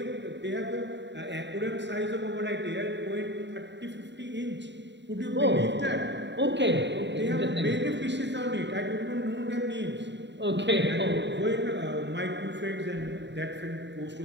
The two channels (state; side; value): late; left; 0.52 ms